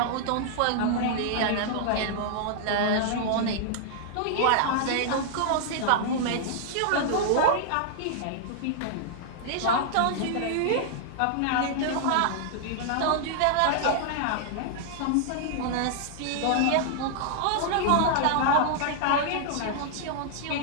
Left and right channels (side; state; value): both; different; correlation -0.01